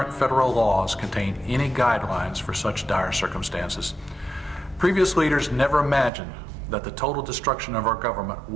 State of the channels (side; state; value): left; drops out; at 6.1 s